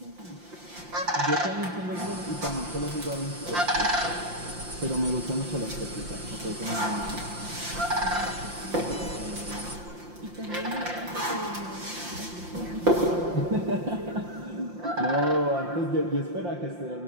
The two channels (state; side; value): late; left; 5.7 ms